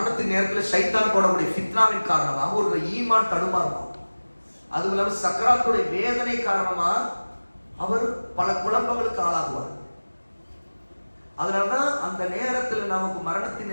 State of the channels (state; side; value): inverted; both; correlation -1.00